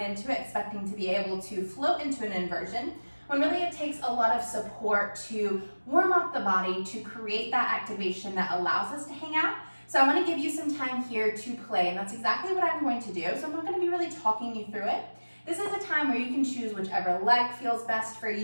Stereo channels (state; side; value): inverted; both; correlation -1.00